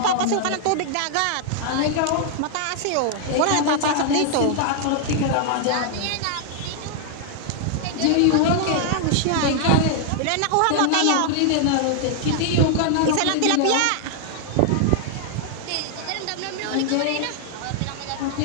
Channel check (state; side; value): different; both; correlation -0.01